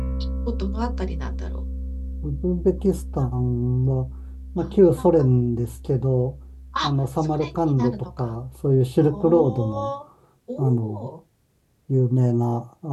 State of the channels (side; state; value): both; identical; correlation 1.00